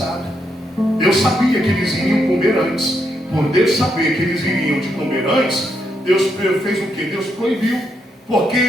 Deus sabia que eles iriam comer antes. Por Deus saber que eles iriam de comer antes, Deus fez o que? Deus proibiu.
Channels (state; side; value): normal; both; correlation 0.79